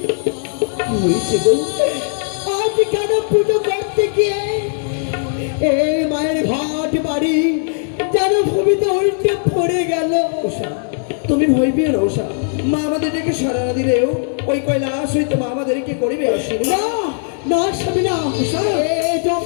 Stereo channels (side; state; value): right; silent; digital silence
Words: হয়েছে গো? আজ কেন পুজো করতে গিয়ে এই মায়ের ঘাট বাড়ি যেন ভূমিতে উল্টে পড়ে গেল। উষা, তুমি ভয় পেও না উষা। মা আমাদেরকে সারা না দিলেও ওই কৈলাস হইতে মা আমাদেরকে করিবে আশীর্বাদ। না না স্বামী না, এই যে